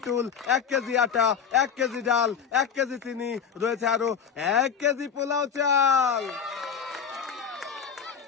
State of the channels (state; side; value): quieter; right; 7.0 dB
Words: টুল, 1 কেজি আটা, 1 কেজি ডাল, 1 কেজি চিনি, রয়েছে আরো 1 কেজি পোলাও চাল।